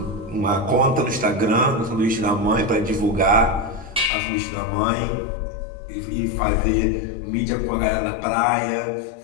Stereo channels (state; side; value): drops out; right; at 4.1 s